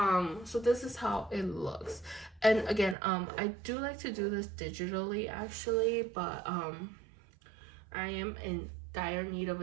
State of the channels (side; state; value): left; drops out; at 3.0 s